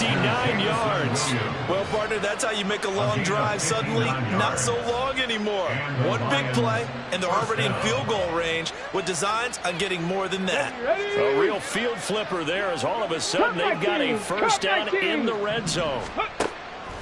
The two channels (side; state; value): both; identical; correlation 1.00